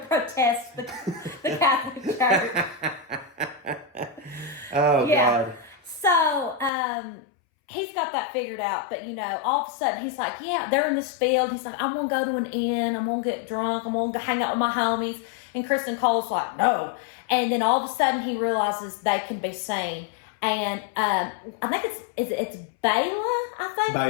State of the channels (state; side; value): drops out; right; at 6.7 s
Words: the Catholic Church. Oh, yeah. God. So, he's got that figured out. But, all of a sudden, he's like, yeah, they're in this field. He's like, I'm going to go to an inn. I'm going to get drunk. I'm going to hang out with my homies. And Kristen Cole's like, no. And then all of a sudden, he realizes they can be seen. And I think it's Bela, I think.